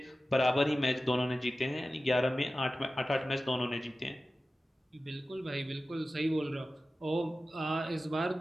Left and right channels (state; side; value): normal; both; correlation 0.95